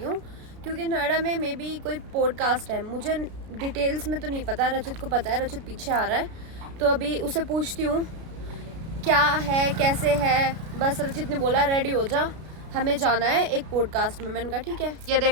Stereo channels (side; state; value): left; late; 33 ms